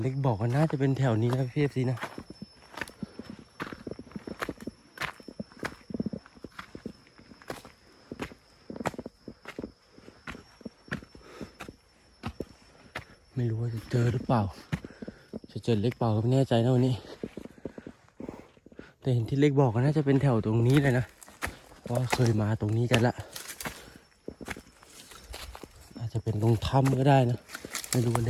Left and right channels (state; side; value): identical; both; correlation 1.00